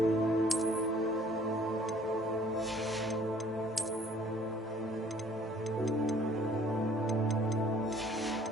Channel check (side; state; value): both; normal; correlation 0.57